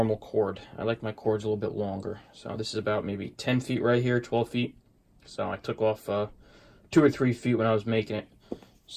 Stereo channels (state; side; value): identical; both; correlation 1.00